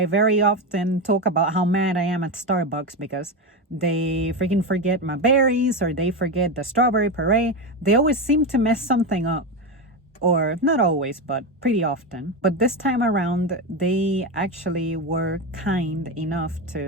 very often talk about how mad I am at Starbucks because they freaking forget my berries or they forget the strawberry puree. They always seem to mess something up. Or not always, but pretty often. But this time around, they actually were kind enough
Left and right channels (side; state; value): both; normal; correlation 0.15